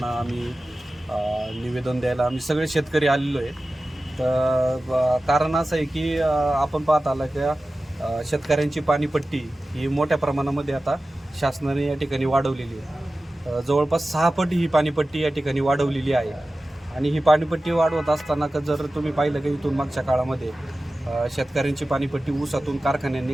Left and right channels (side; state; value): both; normal; correlation 0.95